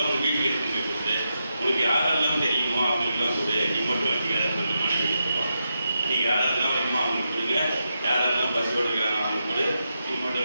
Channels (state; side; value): inverted; both; correlation -0.86